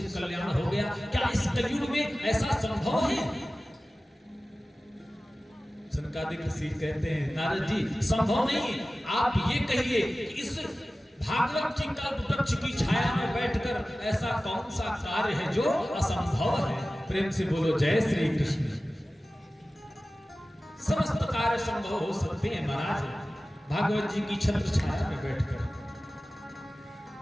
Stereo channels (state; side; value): normal; both; correlation 0.96